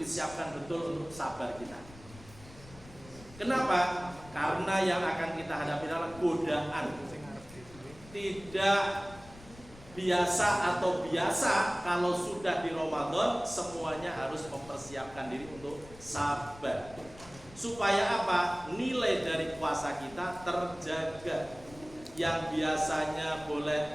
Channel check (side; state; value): left; noise; rumble, 19 dB below the sound